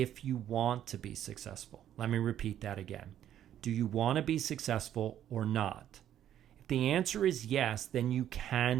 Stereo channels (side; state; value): left; quieter; 11.0 dB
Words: you want to be successful. Let me repeat that again. Do you want to be successful or not? If the answer is yes, then you